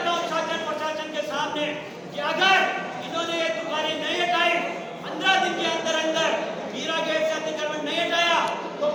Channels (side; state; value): both; identical; correlation 1.00